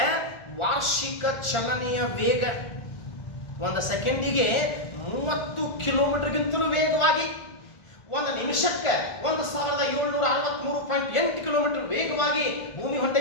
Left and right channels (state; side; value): late; right; 1.4 ms